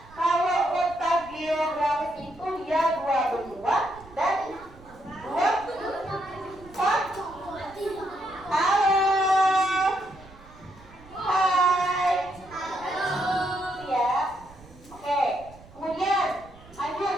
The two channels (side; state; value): right; noise; rumble, 22 dB below the sound